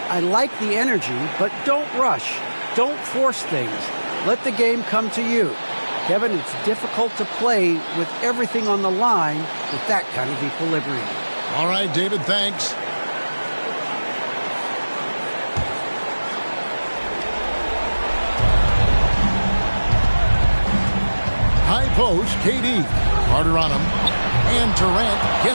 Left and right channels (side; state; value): both; inverted; correlation -1.00